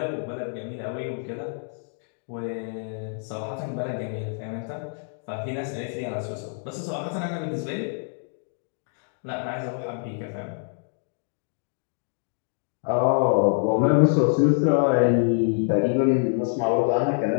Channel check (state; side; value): silent; right; 61 dB below the other